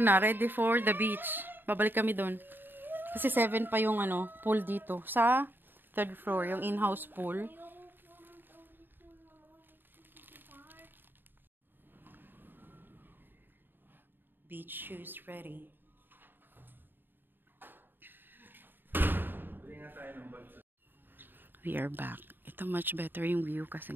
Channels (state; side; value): late; left; 0.095 ms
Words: ready for the beach. Babalik kami doon. Kasi 7 pa yung pool dito. Sa 3rd floor, yung in-house pool. Beach shoes ready. We are back. Ito much better yung view